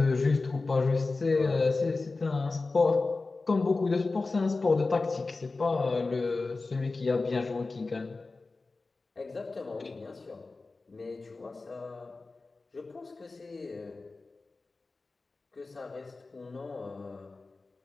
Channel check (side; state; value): right; quieter; 3.6 dB